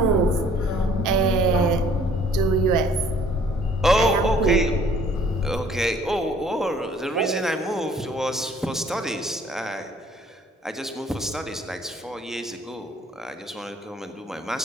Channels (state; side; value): normal; both; correlation 0.57